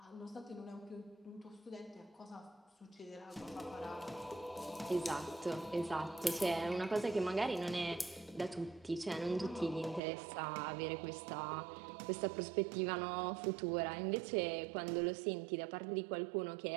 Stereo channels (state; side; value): drops out; left; at 10.0 s